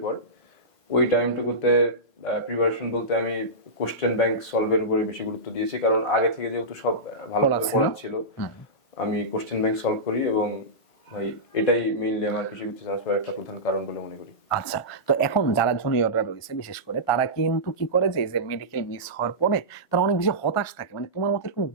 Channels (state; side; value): late; right; 1.5 ms